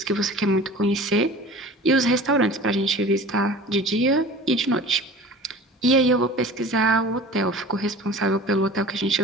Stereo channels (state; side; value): normal; both; correlation 0.41